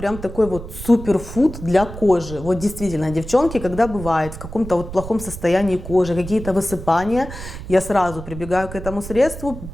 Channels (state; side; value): noise; right; rumble, 11 dB below the sound